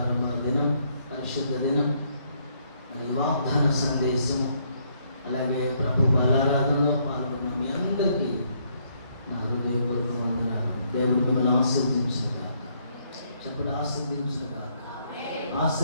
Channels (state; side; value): inverted; both; correlation -0.71